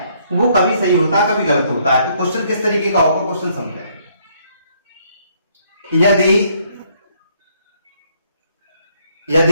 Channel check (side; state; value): both; inverted; correlation -0.68